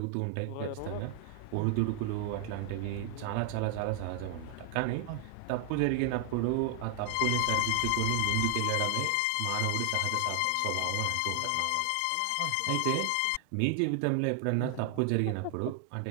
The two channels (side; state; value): both; different; correlation 0.00